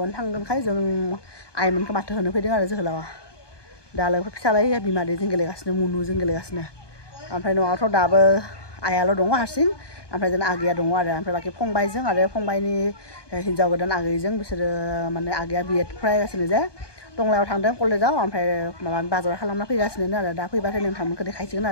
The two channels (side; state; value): right; late; 1.2 ms